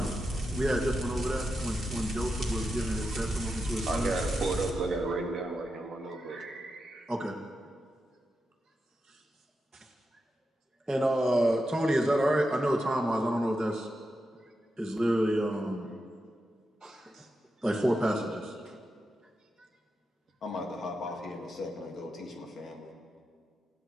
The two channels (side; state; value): both; normal; correlation 0.88